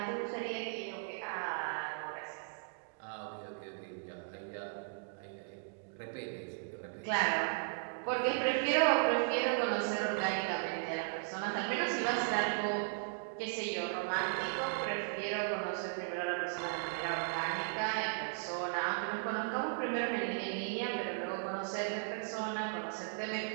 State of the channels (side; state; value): left; silent; digital silence